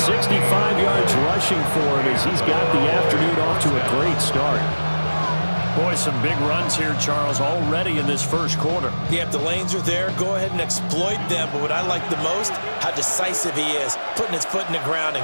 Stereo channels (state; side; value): inverted; both; correlation -1.00